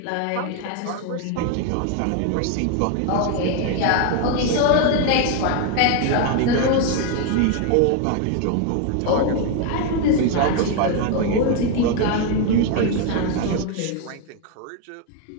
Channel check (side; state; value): both; different; correlation 0.01